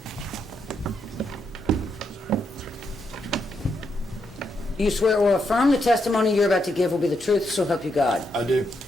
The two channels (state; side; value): normal; both; correlation 0.80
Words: You swear or affirm the testimony you're about to give will be the truth, so help you God. I do.